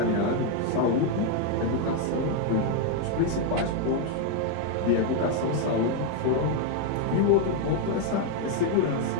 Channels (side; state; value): both; different; correlation 0.01